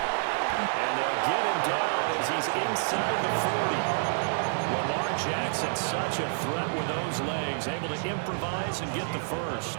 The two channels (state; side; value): silent; left; digital silence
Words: And they'll get him down as he's inside the 40. Lamar Jackson, such a threat with those legs, able to improvise and get the